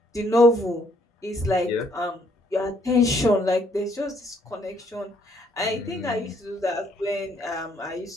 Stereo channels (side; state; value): both; normal; correlation 0.68